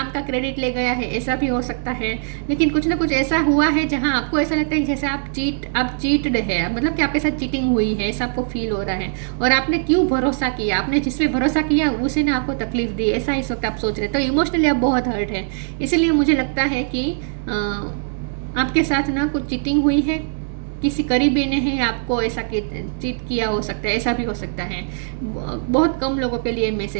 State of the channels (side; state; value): left; silent; 65 dB below the other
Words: का क्रेडिट ले गया है, ऐसा भी हो सकता है। लेकिन कुछ ना कुछ ऐसा हुआ है जहां आपको ऐसा लगता है कि जैसे आप चीटड है, मतलब कि आपके साथ चीटिंग हुई है, ऐसा आपको फील हो रहा है। और आपने क्यों भरोसा किया, आपने जिस पे भरोसा किया उसी ने आपको तकलीफ दी, ऐसा इस वक्त आप सोच रहे हैं। तो इमोशनली आप बहुत हर्ट है। इसलिए मुझे लगता है कि आपके साथ ना कुछ चीटिंग हुई है, किसी करीबी ने ही आपको ऐसा चीट किया हो सकता है, ऐसा भी हो सकता है। बहुत कम लोगों के लिए